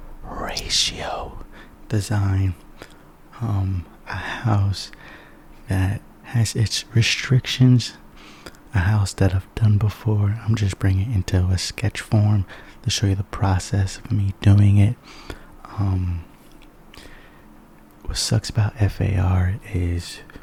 ratio design. A house that has its restrictions, a house that I've done before. I'm just bringing it into a sketch form to show you the process of me doing it. What sucks about F.A.R. is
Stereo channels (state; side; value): identical; both; correlation 1.00